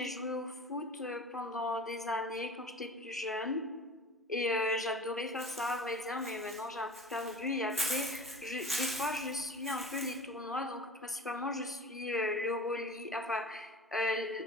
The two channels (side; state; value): both; normal; correlation 0.39